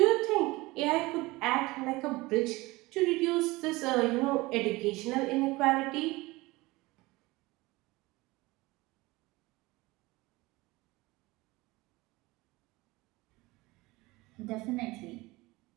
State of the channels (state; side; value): quieter; left; 21.3 dB